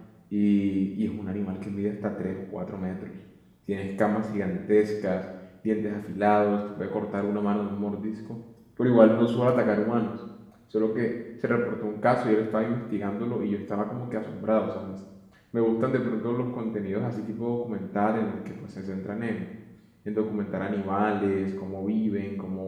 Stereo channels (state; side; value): identical; both; correlation 1.00